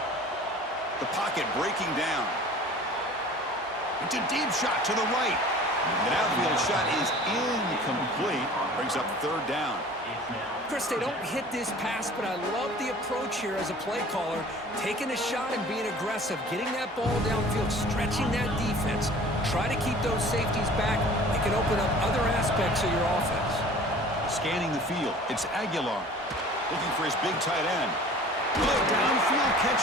The pocket breaking down. It's a deep shot to the right. An outfield shot is incomplete. Brings up third down. Chris, they don't hit this pass, but I love the approach here as a play caller. Taking a shot and being aggressive, getting that ball downfield, stretching that defense. Try to keep those safeties back. It can open up other aspects of your offense. Scanning the field, it's Aguilar. Looking for his big tight end. Good downfield catch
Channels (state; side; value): normal; both; correlation 0.45